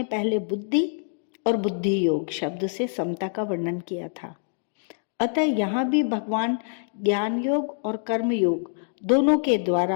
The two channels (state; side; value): silent; right; digital silence